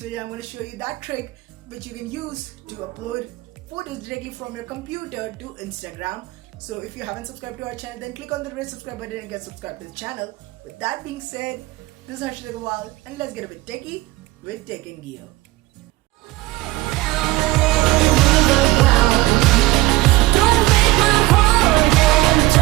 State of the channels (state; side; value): quieter; left; 18.7 dB